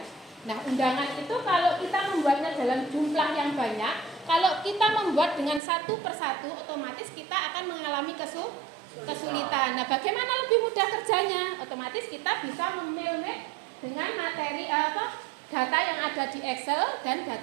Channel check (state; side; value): drops out; left; at 5.6 s